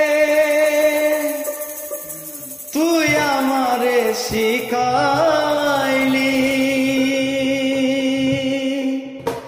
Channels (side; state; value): both; identical; correlation 1.00